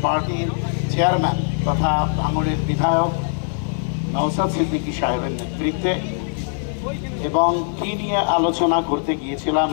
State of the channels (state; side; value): silent; right; 57 dB below the other